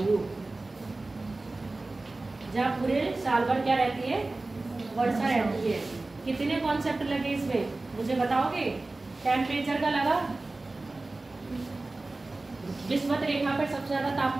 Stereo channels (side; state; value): left; quieter; 3.1 dB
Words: जहाँ पूरे साल भर क्या रहती है? वर्षा रहती है। कितने कॉन्सेप्ट लगे इसमें मुझे बताओगे? टेम्परेचर का लगा, विषुवत रेखा पर सबसे ज्यादा